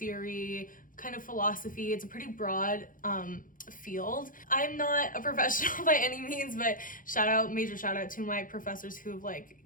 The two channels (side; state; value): right; late; 0.39 ms